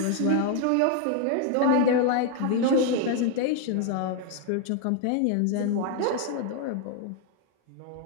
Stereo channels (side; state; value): both; different; correlation 0.01